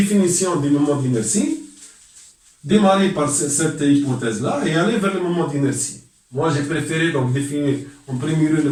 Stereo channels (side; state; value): both; identical; correlation 1.00